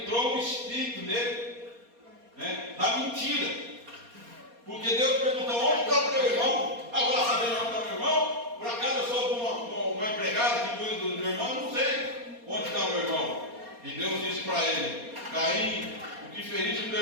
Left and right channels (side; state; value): left; late; 4.2 ms